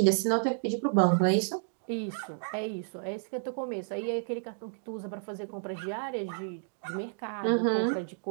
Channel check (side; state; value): left; silent; digital silence